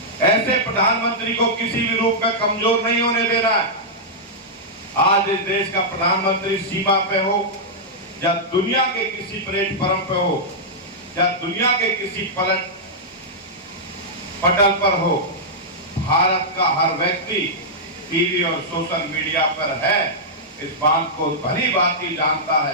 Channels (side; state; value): both; normal; correlation -0.10